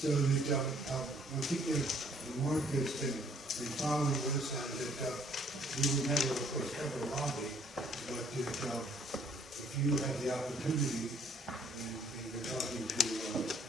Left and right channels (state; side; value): normal; both; correlation 0.62